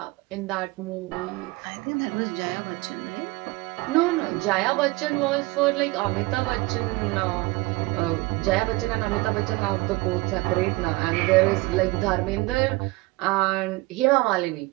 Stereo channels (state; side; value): quieter; left; 22.7 dB